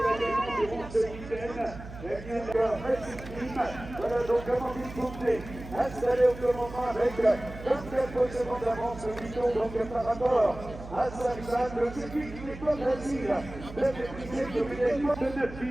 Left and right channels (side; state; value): right; noise; hum, 13 dB below the sound